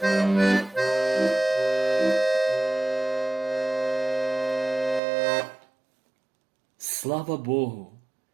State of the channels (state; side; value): drops out; left; at 5.0 s